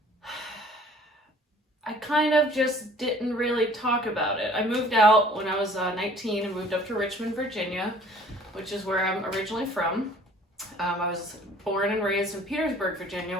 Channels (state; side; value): normal; both; correlation 0.53